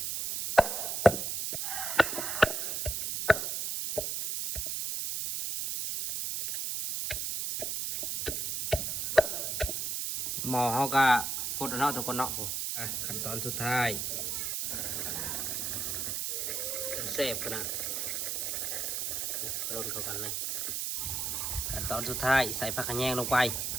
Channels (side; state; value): right; noise; hiss, 1 dB below the sound